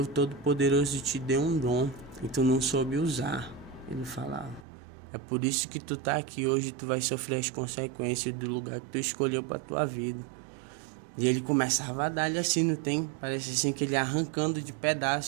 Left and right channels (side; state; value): left; drops out; at 4.7 s